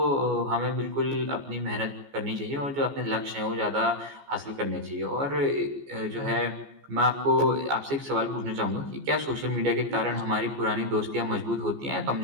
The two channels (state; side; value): late; left; 14 ms